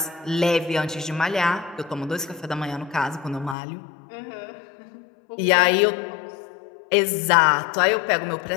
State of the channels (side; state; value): right; drops out; at 3.6 s